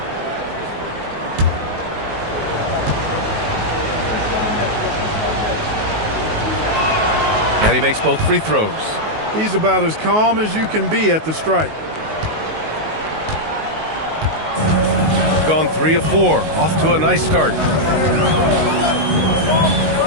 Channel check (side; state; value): left; late; 19 ms